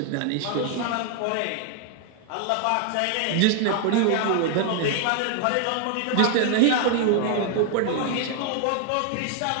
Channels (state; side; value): different; both; correlation 0.00